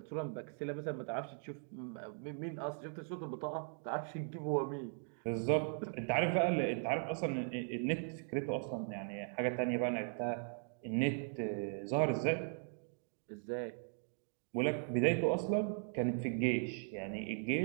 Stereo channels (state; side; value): silent; left; 52 dB below the other